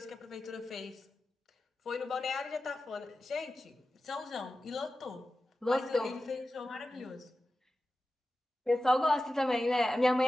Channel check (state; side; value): normal; both; correlation 0.93